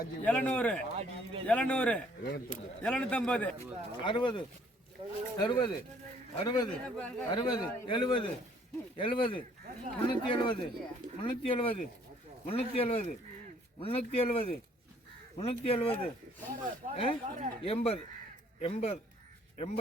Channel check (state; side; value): normal; both; correlation 0.61